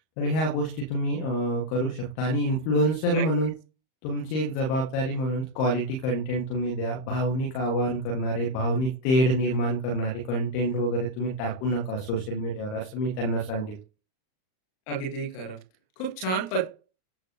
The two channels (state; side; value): late; right; 38 ms